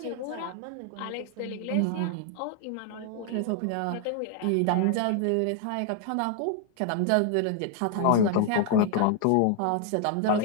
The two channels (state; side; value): different; both; correlation 0.00